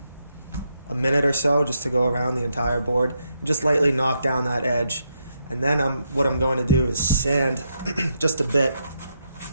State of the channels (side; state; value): both; inverted; correlation -0.80